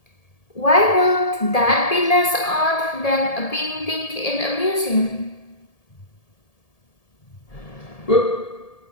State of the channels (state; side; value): late; right; 1.7 ms